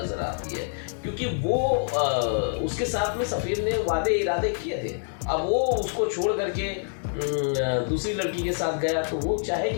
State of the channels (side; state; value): right; silent; digital silence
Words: आती है, क्योंकि वो उसके साथ में सफ़ीर ने वादे इरादे किए थे। अब वो उसको छोड़ करके दूसरी लड़की के साथ गया, तो वो